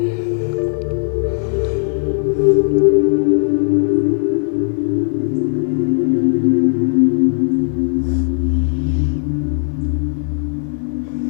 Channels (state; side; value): silent; right; 56 dB below the other